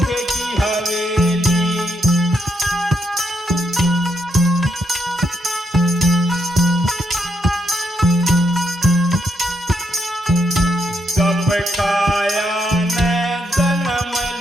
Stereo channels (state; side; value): normal; both; correlation 0.78